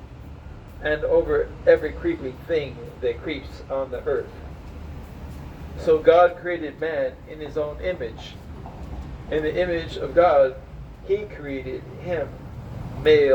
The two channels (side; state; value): both; identical; correlation 1.00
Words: and over every creeping thing that creeps on the earth." So God created man in his own image. In the image of God, he created him.